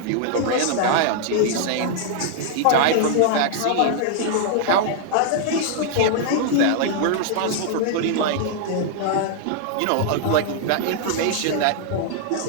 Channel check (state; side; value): different; both; correlation -0.01